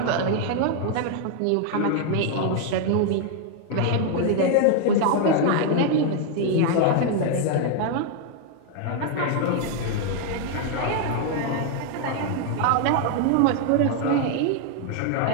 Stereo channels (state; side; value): different; both; correlation 0.00